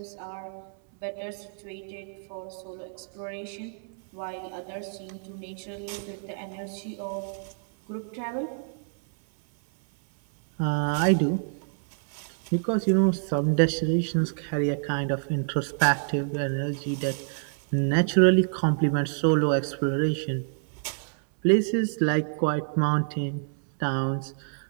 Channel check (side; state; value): left; silent; 60 dB below the other